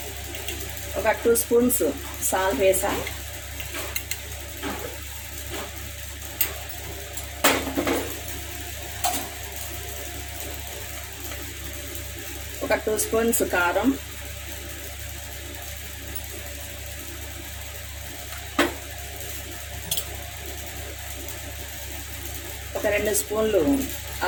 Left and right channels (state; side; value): identical; both; correlation 1.00